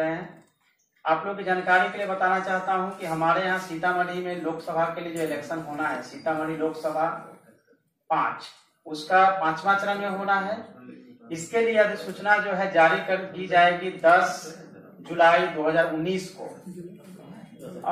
हैं। आप लोग की जानकारी के लिए बताना चाहता हूं कि हमारे यहाँ सीतामढ़ी में लोकसभा के लिए जो इलेक्शन होना है, सीतामढ़ी लोकसभा 5, उसका 5वां चरण में होना है। इसके लिए अधिसूचना जो है जारी कर दी जाएगी 10 जुलाई 2019 को,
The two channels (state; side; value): identical; both; correlation 1.00